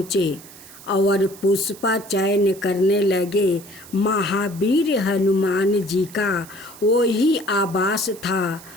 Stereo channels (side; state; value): right; noise; hiss, 19 dB below the sound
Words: और पुष्प चयन करने लगे। महावीर हनुमान जी का वही आवास था।